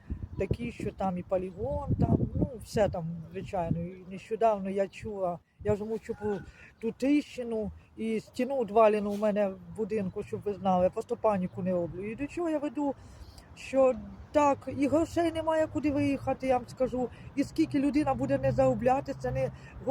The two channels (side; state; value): both; identical; correlation 1.00